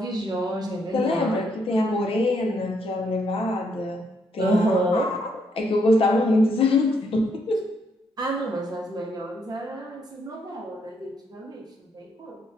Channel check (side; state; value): both; normal; correlation 0.74